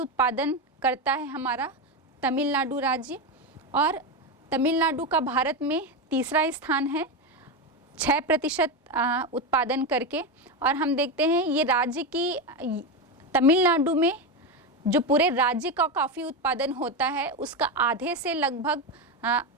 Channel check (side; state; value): both; normal; correlation 0.13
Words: करता है हमारा तमिलनाडु राज्य, और तमिलनाडु का भारत में तीसरा स्थान है 6% उत्पादन करके। और हम देखते हैं ये राज्य की तमिलनाडु में जो पूरे राज्य का कॉफ़ी उत्पादन होता है उसका आधे से लगभग